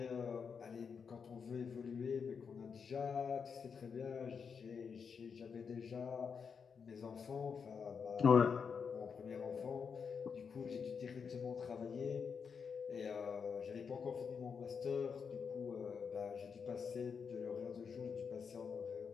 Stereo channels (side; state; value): right; quieter; 6.2 dB